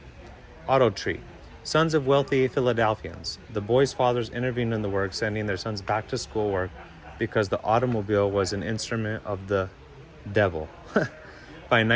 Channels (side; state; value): both; identical; correlation 1.00